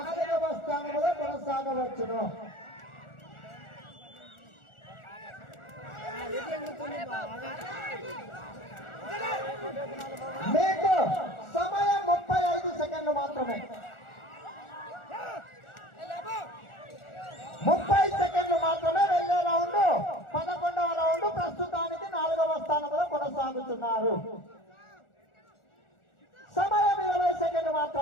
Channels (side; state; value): right; late; 1.4 ms